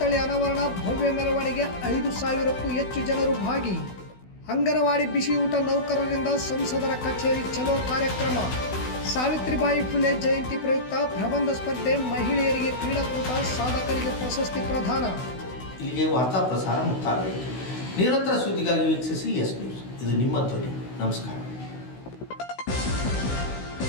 ಅನಾವರಣ, ಭವ್ಯ ಮೆರವಣಿಗೆ, 5,000ಕ್ಕೂ ಹೆಚ್ಚು ಜನರು ಭಾಗಿ. ಅಂಗನವಾಡಿ ಬಿಸಿ ಊಟ ನೌಕರರಿಂದ ಸಂಸದರ ಕಚೇರಿ ಚಲೋ ಕಾರ್ಯಕ್ರಮ. ಸಾವಿತ್ರಿಬಾಯಿ ಫುಲೆ ಜಯಂತಿ ಪ್ರಯುಕ್ತ ಪ್ರಬಂಧ ಸ್ಪರ್ಧೆ, ಮಹಿಳೆಯರಿಗೆ ಕ್ರೀಡಾಕೂಟ, ಸಾಧಕರಿಗೆ ಪ್ರಶಸ್ತಿ ಪ್ರದಾನ. ಇಲ್ಲಿಗೆ ವಾರ್ತಾ ಪ್ರಸಾರ ಮುಕ್ತಾಯವಾಯಿತು. ನಿರಂತರ ಸುದ್ದಿಗಾಗಿ ವೀಕ್ಷಿಸಿ ಎಸ್ ನ್ಯೂಸ್. ಇದು ನಿಮ್ಮ ಧ್ವನಿ. ನಮಸ್ಕಾರ.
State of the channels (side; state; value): right; late; 16 ms